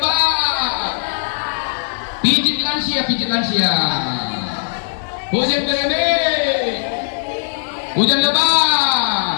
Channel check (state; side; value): silent; right; 67 dB below the other